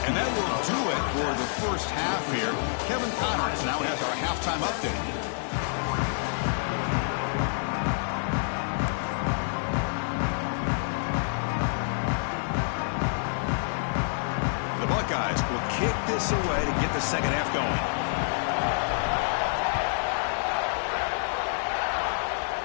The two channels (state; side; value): silent; right; 60 dB below the other